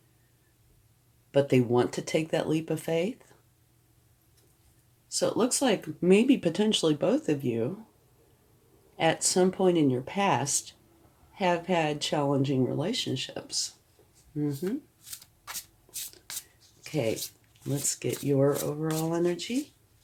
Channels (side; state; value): both; identical; correlation 1.00